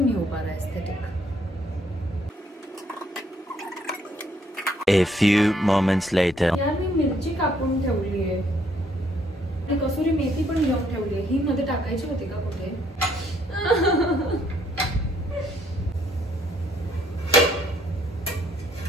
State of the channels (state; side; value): normal; both; correlation 0.67